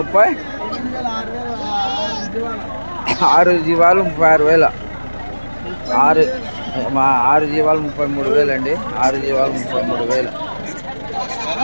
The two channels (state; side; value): inverted; both; correlation -1.00